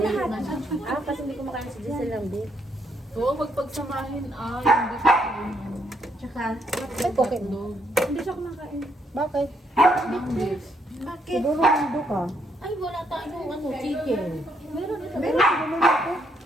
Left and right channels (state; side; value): normal; both; correlation 0.74